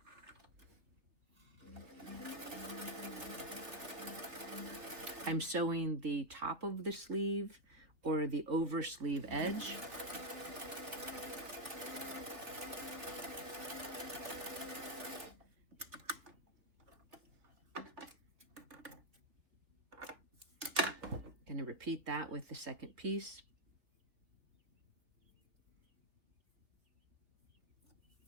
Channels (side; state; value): left; late; 3.2 ms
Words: I'm sewing the top of the sleeve or the over sleeve edge. Going to repeat that with the second piece.